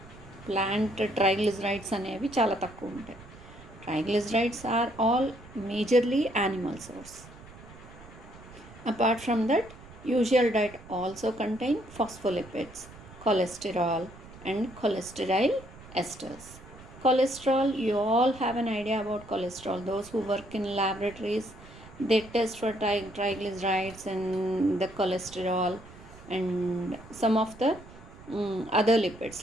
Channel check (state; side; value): noise; right; rumble, 19 dB below the sound